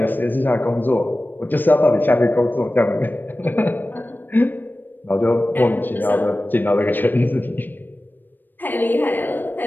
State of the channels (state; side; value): late; right; 0.092 ms